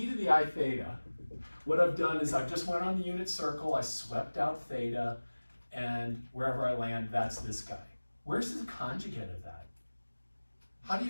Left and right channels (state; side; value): inverted; both; correlation -1.00